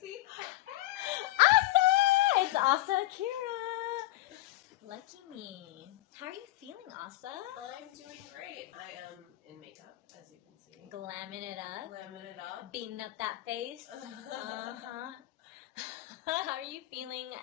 Asa! It's Asa Akira! Lucky me. How are you feeling, Asa? I'm doing great. I am in makeup, as you can see. Glamming it up. Glamming it up. Beating up that face. Uh-huh. How are you feeling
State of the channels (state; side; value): quieter; right; 16.9 dB